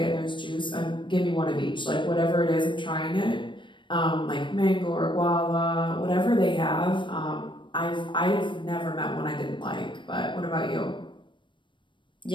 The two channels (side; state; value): right; late; 0.23 ms